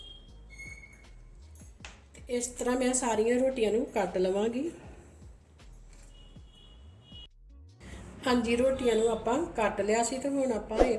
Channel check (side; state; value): both; identical; correlation 1.00